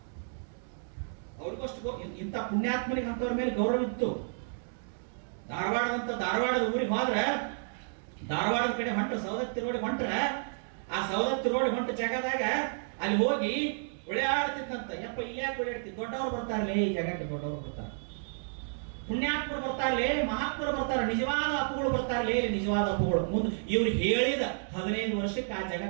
ಅವ್ರಿಗಷ್ಟು ಇಂಥ ಪುಣ್ಯಾತ್ಮನಿಗೆ ಅಂತವ್ರ ಮೇಲೆ ಗೌರವ ಇತ್ತು. ಧಾರವಾಡದ ಊರಿಗೆ ಹೋದ್ರೆ, ಧಾರವಾಡದ ಕಡೆ ಹೊಂಟ್ರೆ, ಸವದತ್ತಿ ರೋಡ್ ಹೊಂಟ್ರೆ, ಆ ಸವದತ್ತಿ ರೋಡ್ ಹೊಂಟ ಜಾಗದಾಗ ಅಲ್ಲಿ ಹೋಗಿ ಉಳಿಯಾಡ್ತಿದ್ದಂತ. ಯಪ್ಪ ಇಲ್ಲಿ ಯಾಕೆ ಉಳಿಯಾಡ್ತಿ, ದೊಡ್ಡವ್ರು ಬರ್ತಾರಲ್ಲೇ ಈ ಜಾಗಕ್ಕೆ, ದೊಡ್ಡವ್ರು ಬರ್ತಾರೆ, ಪುಣ್ಯಾತ್ಮರು ಬರ್ತಾರಲ್ಲೇ, ಮಹಾತ್ಮರು ಬರ್ತಾರೆ, ನಿಜವಾದ ಅಪ್ಪುಗಳು ಬರ್ತಾರಲ್ಲೇ, ನಿಜವಾದ ಅಪ್ಪುಗಳು. ಮುಂದೆ ಇವ್ರು ಹೇಳಿದ 15 ವರ್ಷಕ್ಕೆ ಆ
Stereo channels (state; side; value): silent; left; digital silence